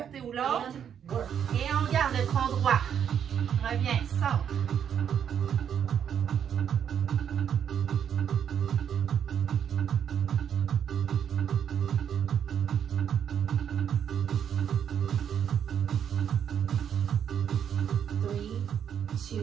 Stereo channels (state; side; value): quieter; left; 8.5 dB